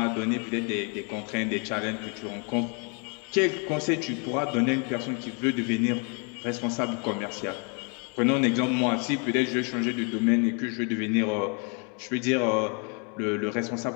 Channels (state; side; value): quieter; right; 36.6 dB